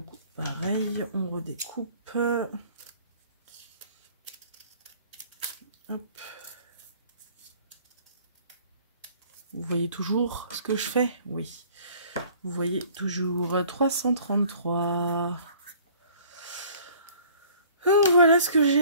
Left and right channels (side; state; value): both; inverted; correlation -0.53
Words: pareil, on redécoupe. Hop. Vous voyez toujours ce que je fais? Oui. Vous voyez toujours 333. Donc voilà ce que